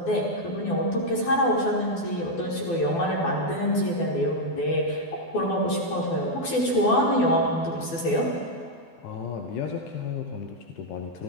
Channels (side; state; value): right; late; 12 ms